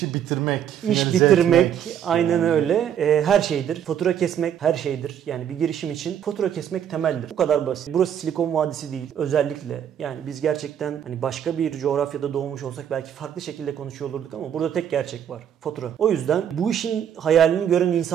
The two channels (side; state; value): left; quieter; 9.3 dB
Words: bitirmek, İş finalize bitirmek etmek. aynen öyle. Her şeydir. Fatura kesmek her şeydir. Yani bir girişim için fatura kesmek temeldir. Bu kadar basit. Burası Silikon Vadisi değil. Özellikle yani biz gerçekten hani başka bir coğrafyada doğmuş olsak belki farklı şekilde konuşuyor olurduk ama burada tek gerçek var. Fatura. O yüzden bu işin hayalini gören